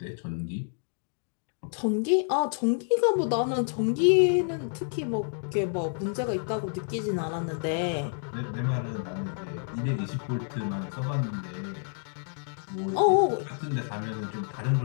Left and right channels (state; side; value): silent; right; 59 dB below the other